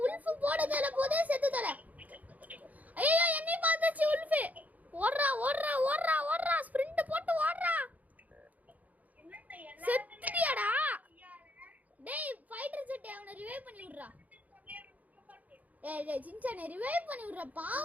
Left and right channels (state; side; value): late; left; 0.076 ms